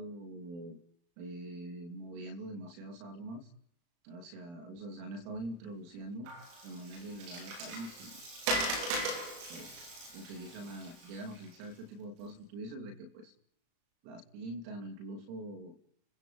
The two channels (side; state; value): left; late; 35 ms